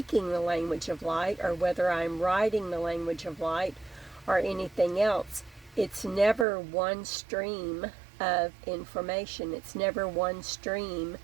the language of light, or whether I'm writing the language of light or anything else. It's never one stream of information. It's never one stream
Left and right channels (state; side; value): drops out; left; at 6.5 s